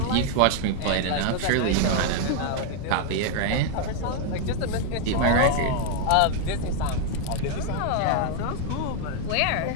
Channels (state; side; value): different; both; correlation 0.00